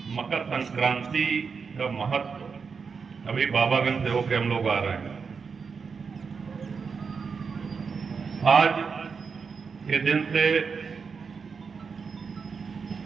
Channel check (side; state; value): left; quieter; 5.5 dB